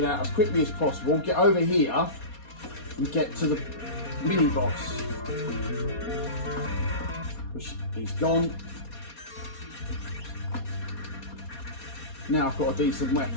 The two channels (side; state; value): right; late; 4.2 ms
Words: out as quickly as possible, get over here and get to the mini boss. Which he's gone. Now I've got a decent